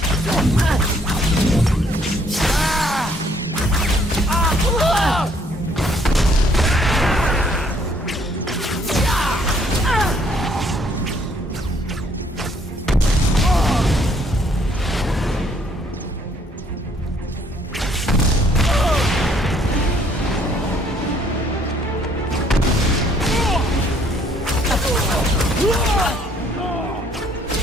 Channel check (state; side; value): normal; both; correlation 0.65